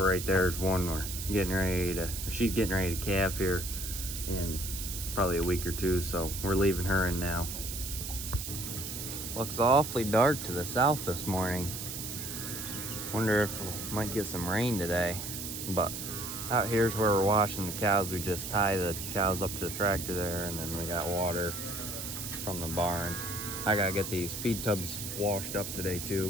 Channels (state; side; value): noise; right; hiss, 6 dB below the sound